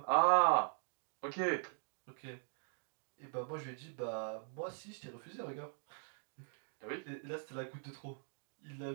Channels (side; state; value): left; silent; 50 dB below the other